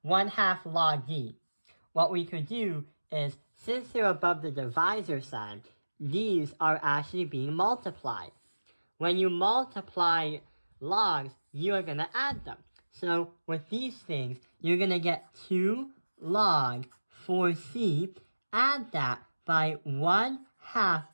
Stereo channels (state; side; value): inverted; both; correlation -1.00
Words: 1/2 log d. What we could do is, since they're above the divisor sign, these are actually being multiplied. When you multiply logs, you are going to add them. So with these things, you're going to get 2 log 4c, add that by 1/2